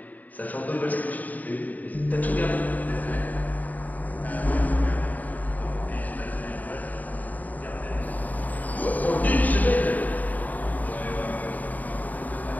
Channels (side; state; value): right; late; 0.079 ms